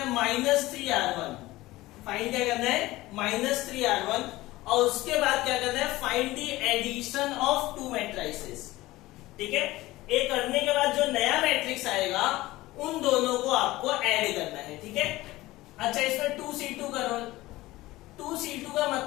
-3R1, फाइंड क्या करना है -3R1, और उसके बाद क्या करना है find the addition of 2 matrices. ठीक है, ये करने के बाद जो नया मैट्रिक्स आएगा उन दोनों को आपको ऐड करना है। ठीक है, अच्छा इसमें 2C2 करो। 2C2 का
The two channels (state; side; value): quieter; right; 18.2 dB